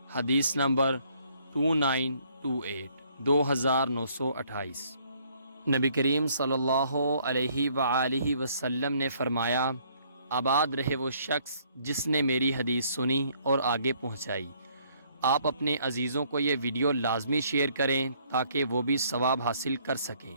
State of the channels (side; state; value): both; inverted; correlation -0.65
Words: حدیث نمبر 2928 2928۔ نبی کریم صلی اللہ علیہ وآلہ وسلم نے فرمایا، آباد رہے وہ شخص جس نے میری حدیث سنی اور آگے پہنچائی۔ آپ اپنے عزیزوں کو یہ ویڈیو لازمی شیئر کریں تاکہ وہ بھی ثواب حاصل کر سکیں۔